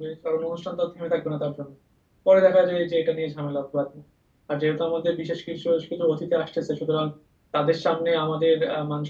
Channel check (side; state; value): both; identical; correlation 1.00